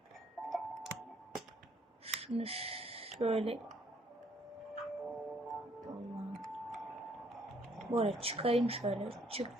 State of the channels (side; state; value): both; normal; correlation 0.66